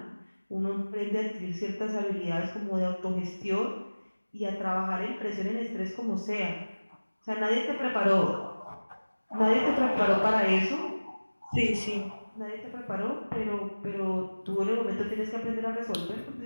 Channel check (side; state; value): both; inverted; correlation -1.00